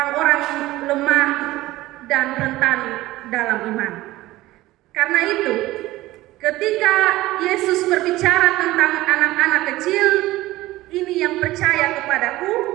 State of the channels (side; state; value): left; quieter; 17.5 dB